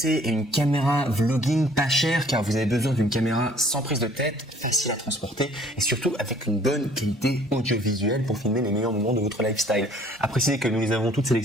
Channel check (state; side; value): normal; both; correlation 0.56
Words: à une caméra vlogging pas chère car vous avez besoin d'une caméra sans prise de tête, facile à transporter et surtout avec une bonne qualité audiovisuelle pour filmer les meilleurs moments de votre lifestyle. À préciser que nous les avons toutes